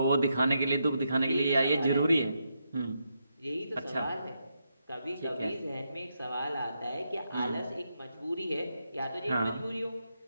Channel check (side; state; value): both; inverted; correlation -0.82